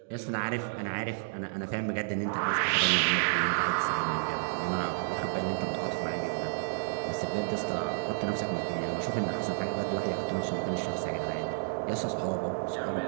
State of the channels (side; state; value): left; silent; digital silence